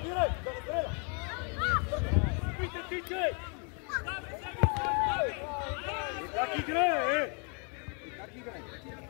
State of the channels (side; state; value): right; quieter; 38.2 dB